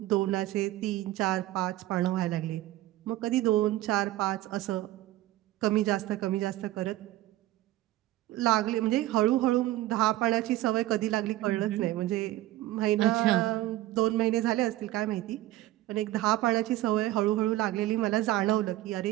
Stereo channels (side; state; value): left; quieter; 15.9 dB